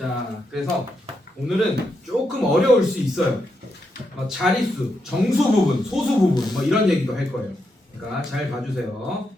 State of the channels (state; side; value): normal; both; correlation 0.83